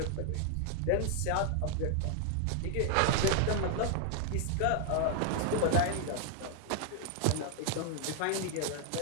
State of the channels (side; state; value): both; different; correlation 0.00